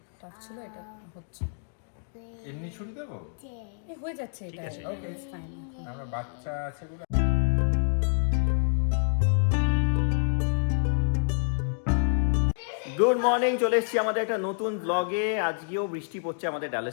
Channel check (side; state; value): right; silent; digital silence